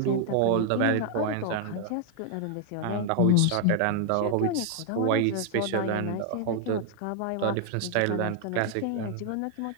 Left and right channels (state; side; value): different; both; correlation 0.00